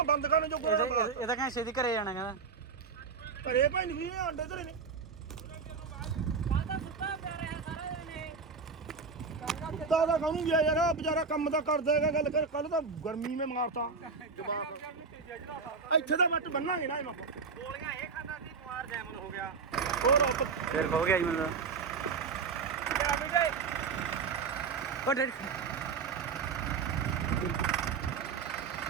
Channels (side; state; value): left; quieter; 5.2 dB